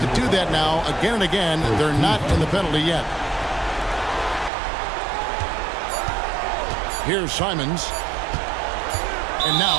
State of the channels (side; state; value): left; drops out; at 4.5 s